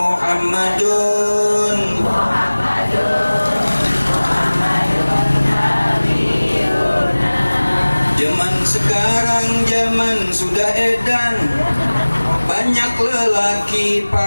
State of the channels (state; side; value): inverted; both; correlation -1.00